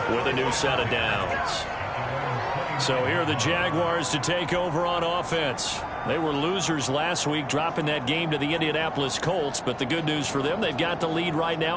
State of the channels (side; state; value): both; identical; correlation 1.00